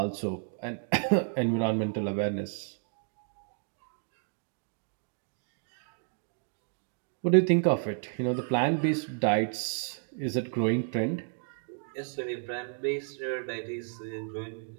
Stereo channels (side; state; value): left; silent; 56 dB below the other